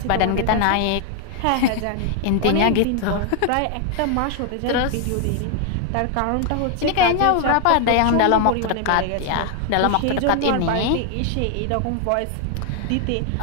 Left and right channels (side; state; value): both; different; correlation 0.00